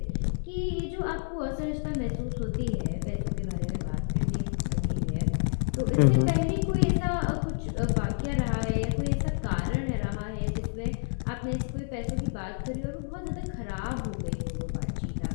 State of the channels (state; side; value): silent; right; 58 dB below the other